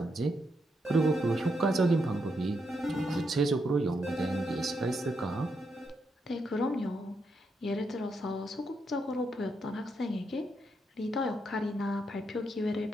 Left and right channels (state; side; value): normal; both; correlation 0.81